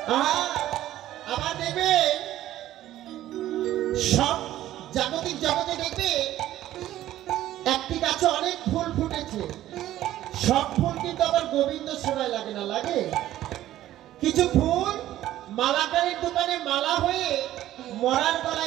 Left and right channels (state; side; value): quieter; left; 13.6 dB